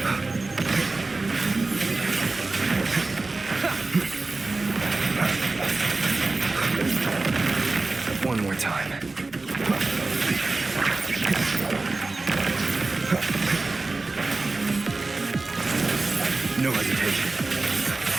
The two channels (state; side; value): quieter; left; 3.5 dB